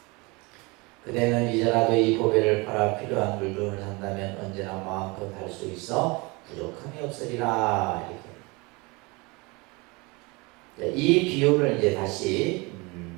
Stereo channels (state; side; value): quieter; left; 26.2 dB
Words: 그대는 이제라도 이 보배를 팔아 필요한 물건을 산다면 언제나 마음껏 할 수 있어 부족함이 없으리라. 이렇게. 이 비유를 이제 다시